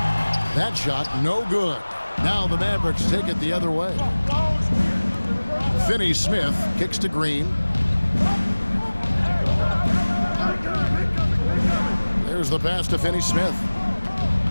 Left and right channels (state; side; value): inverted; both; correlation -1.00